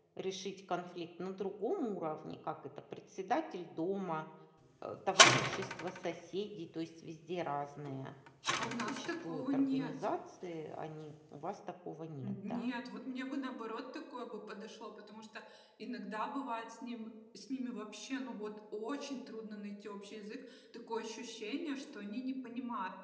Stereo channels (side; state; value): both; identical; correlation 1.00